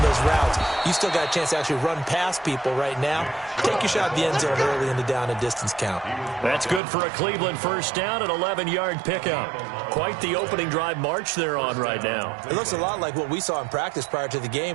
those routes. You still got a chance to actually run past people right now. Take your shot at the end zone early in the down and distance count. That's good for a Cleveland first down, an 11-yard pickup. Quite the opening drive march they're on right now. It looks a lot like what we saw in practice prior to the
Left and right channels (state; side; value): drops out; left; at 6.8 s